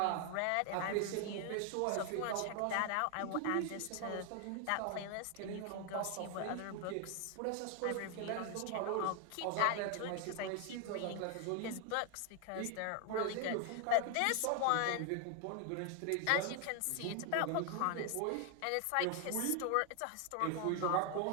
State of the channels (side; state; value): both; different; correlation 0.00